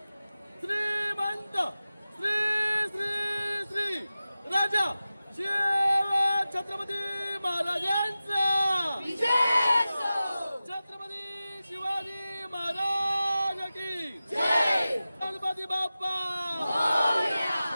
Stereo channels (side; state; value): both; inverted; correlation -0.95